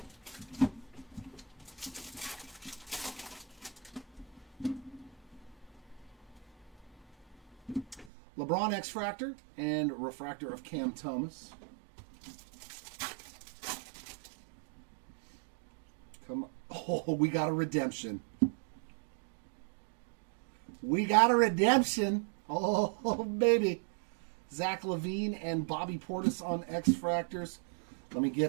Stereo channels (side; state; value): left; drops out; at 8.1 s